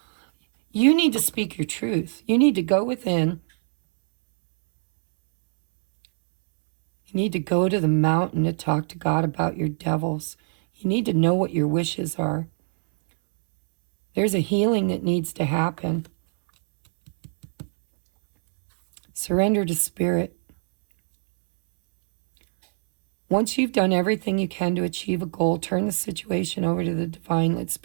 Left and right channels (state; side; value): silent; left; 63 dB below the other